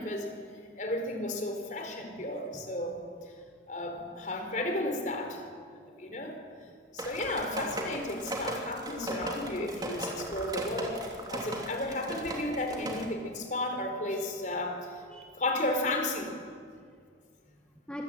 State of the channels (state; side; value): normal; both; correlation 0.14